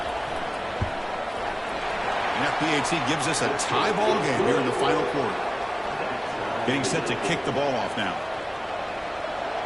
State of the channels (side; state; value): both; identical; correlation 1.00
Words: And that PAT gives us a tie ball game here in the final quarter. Getting set to kick the ball off now.